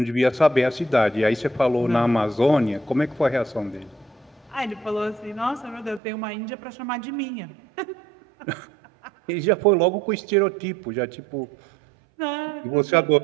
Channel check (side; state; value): left; drops out; at 6.0 s